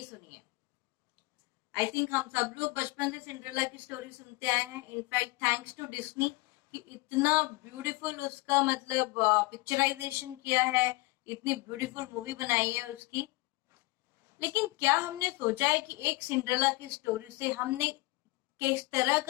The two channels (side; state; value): right; quieter; 23.2 dB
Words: सुनी है? आई थिंक हम सब लोग बचपन से सिंड्रेला की स्टोरी सुनते आए हैं। इनफैक्ट थैंक्स टू डिज्नी कि इतना ब्यूटीफुल उसका पिक्चराइजेशन किया है, इतनी ब्यूटीफुल मूवी बनाई है उसकी। लेकिन क्या हमने सोचा है कि एक सिंड्रेला की स्टोरी से हमने किस तरह